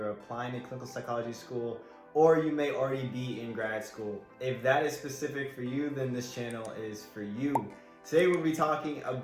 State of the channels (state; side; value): identical; both; correlation 1.00